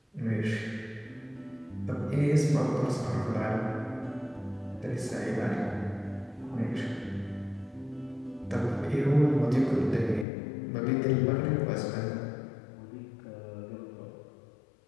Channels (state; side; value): drops out; right; at 10.2 s